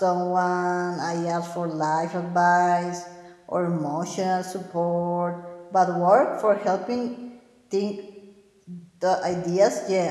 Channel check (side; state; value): both; identical; correlation 1.00